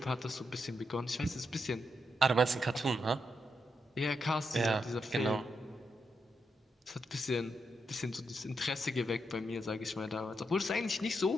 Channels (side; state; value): both; normal; correlation 0.82